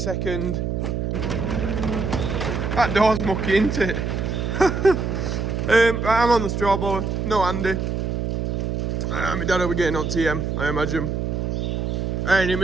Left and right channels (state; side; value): noise; right; hum, 1 dB below the sound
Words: That door's mucky, isn't it? Right, I'm on the straw blower. No Andy. My dad will be getting on TM, I imagine. Any